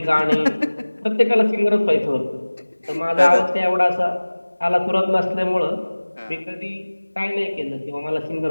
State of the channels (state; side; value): inverted; both; correlation -1.00